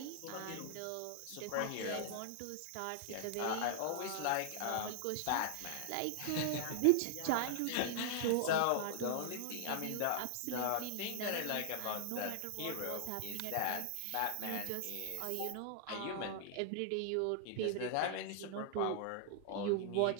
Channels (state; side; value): different; both; correlation -0.01